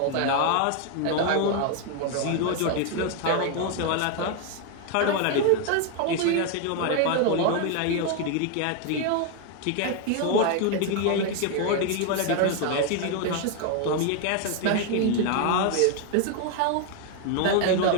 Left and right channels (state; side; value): different; both; correlation 0.01